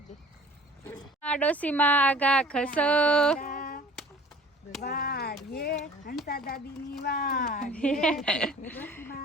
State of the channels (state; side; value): normal; both; correlation 0.48